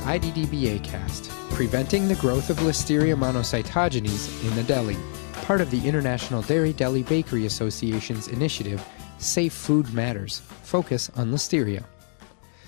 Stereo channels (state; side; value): silent; right; 61 dB below the other